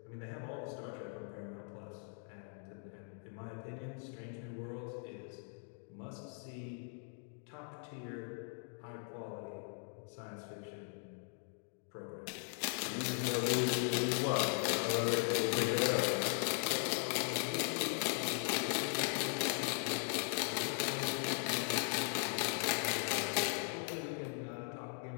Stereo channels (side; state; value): right; silent; 52 dB below the other